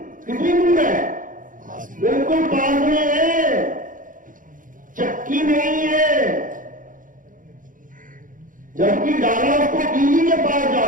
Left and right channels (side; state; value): left; late; 0.39 ms